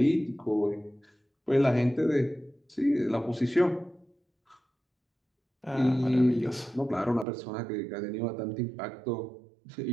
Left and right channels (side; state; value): left; drops out; at 7.2 s